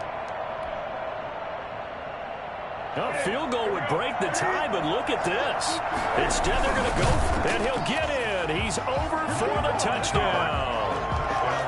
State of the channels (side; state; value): both; identical; correlation 1.00